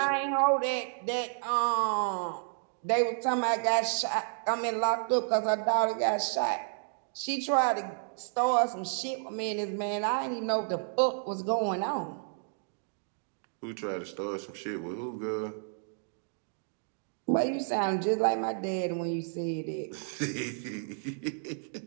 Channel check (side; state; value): left; silent; digital silence